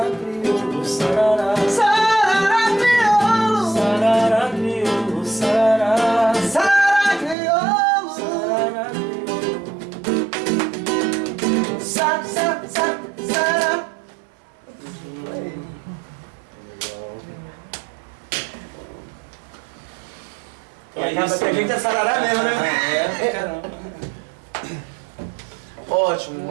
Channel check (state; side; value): drops out; left; at 7.4 s